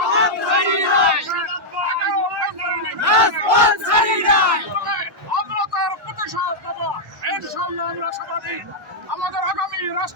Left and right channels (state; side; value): normal; both; correlation -0.04